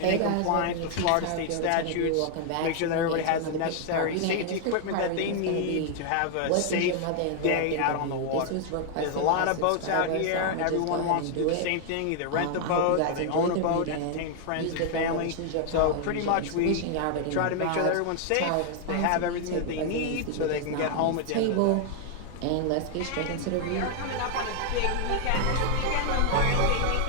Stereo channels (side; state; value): both; different; correlation 0.00